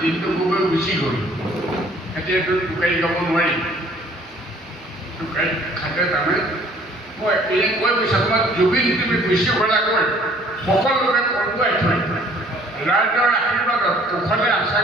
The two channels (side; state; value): both; normal; correlation 0.57